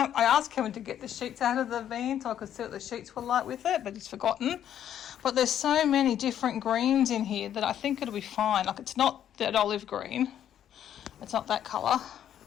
asked Kevin to get the sheets out of the van so I could see what the sheets were like with it, but he's forgotten. But there's so many different greens in here that I think it'll be fine. Like, it's not that olive green. It's not that colour.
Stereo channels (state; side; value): quieter; right; 10.3 dB